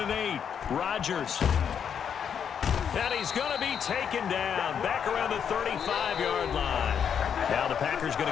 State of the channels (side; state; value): right; quieter; 7.8 dB